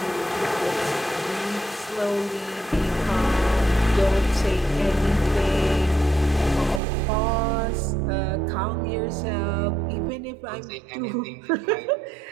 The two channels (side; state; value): left; drops out; at 6.8 s